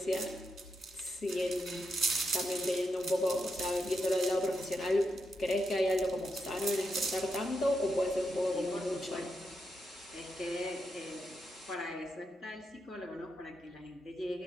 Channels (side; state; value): both; normal; correlation 0.84